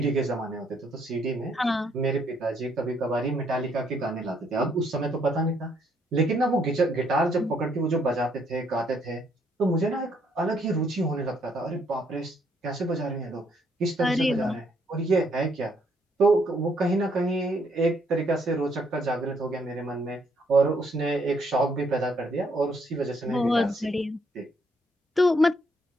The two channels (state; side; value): normal; both; correlation 0.70